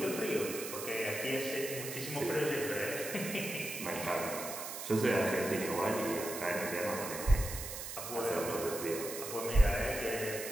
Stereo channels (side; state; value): right; noise; hiss, 7 dB below the sound